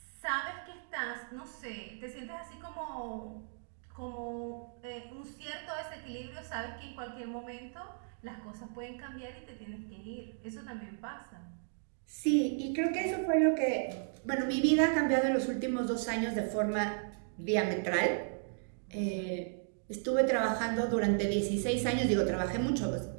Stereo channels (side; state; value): left; silent; digital silence